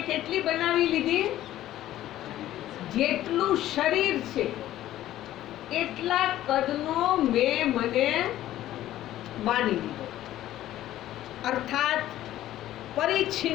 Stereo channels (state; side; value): quieter; right; 13.6 dB